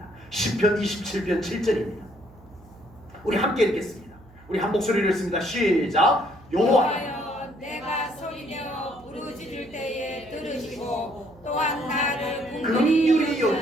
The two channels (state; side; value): noise; right; hum, 24 dB below the sound